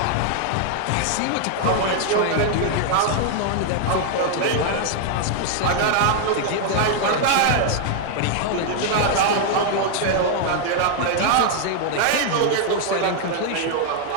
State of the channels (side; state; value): both; different; correlation 0.00